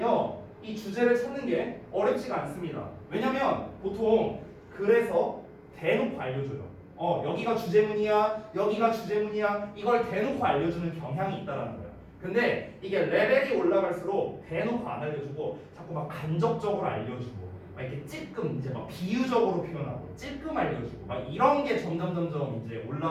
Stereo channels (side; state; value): both; identical; correlation 1.00